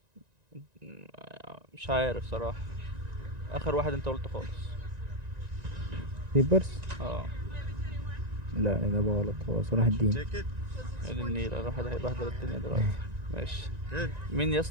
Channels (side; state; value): left; late; 1.9 ms